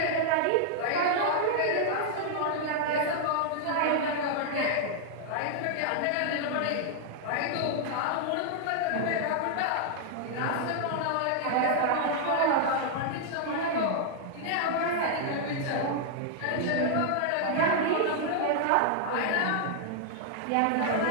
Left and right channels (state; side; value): different; both; correlation -0.01